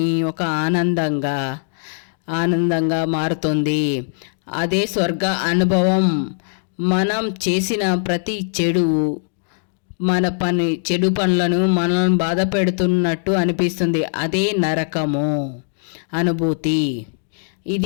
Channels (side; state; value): right; silent; digital silence